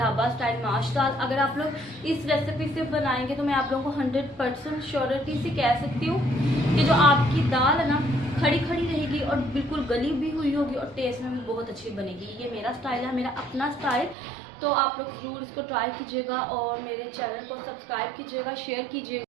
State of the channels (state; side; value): drops out; left; at 14.2 s